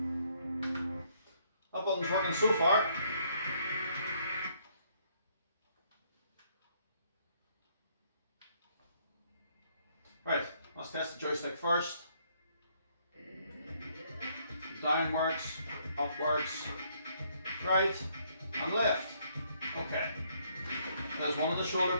That button's working so far. Right, let's test the joystick first. Down works, up works, right and left. Okay. There's one of the shoulder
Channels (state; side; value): inverted; both; correlation -0.69